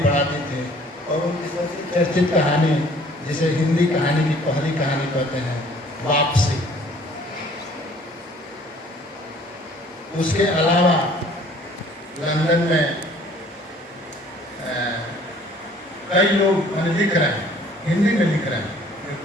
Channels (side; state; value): both; normal; correlation 0.55